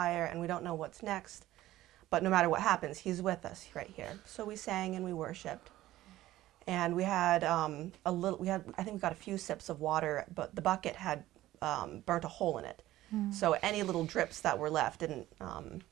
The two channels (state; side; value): quieter; left; 15.3 dB